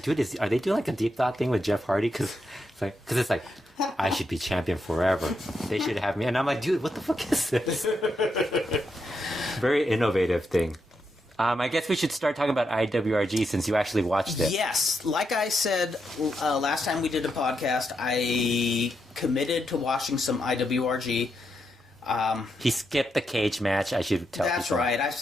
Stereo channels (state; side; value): normal; both; correlation 0.83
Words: dude, are they doing like a deep thought thing with Jeff Hardy? Because it's like. I should be champion forever. They should have me. And I'm like, dude, what the fuck is this? Very innovative thing. I guess we should start talking about IWRG since you actually watched it. Yes. Like I said last time we did a podcast, I committed to watching some IWRG. He skipped the cage match, I should tell people. That's right. I